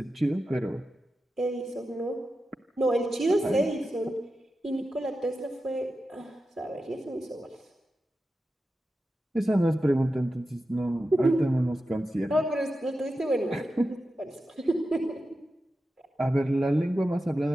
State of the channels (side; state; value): both; normal; correlation 0.91